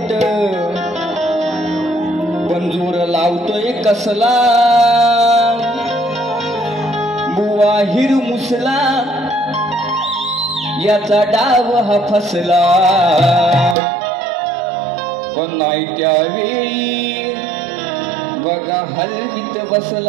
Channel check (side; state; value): left; drops out; at 13.8 s